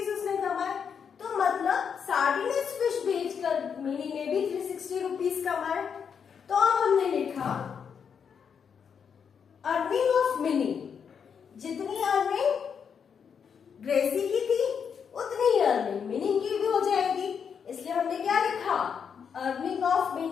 उसने कमाए, तो मतलब सार्डिनस फिश बेचकर मिनी ने भी 360 रुपीज कमाए। तो अब हमने लिखा अर्निंग ऑफ मिनी, जितनी अर्निंग ग्रेसी की थी उतनी ही अर्निंग मिनी की भी हो जाएगी, इसलिए हमने क्या लिखा, अर्निंग ऑफ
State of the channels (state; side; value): quieter; right; 7.0 dB